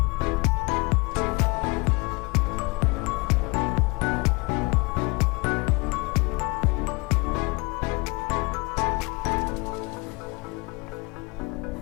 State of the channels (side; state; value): right; quieter; 27.2 dB